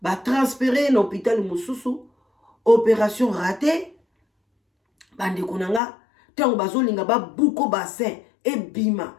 ba transférer na hôpital mosusu opération ratée bande kunanga tango bazolinga ba buko bassin e bima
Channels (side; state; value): right; drops out; at 5.8 s